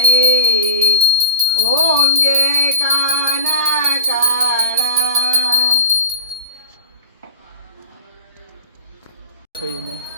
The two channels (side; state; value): both; inverted; correlation -0.39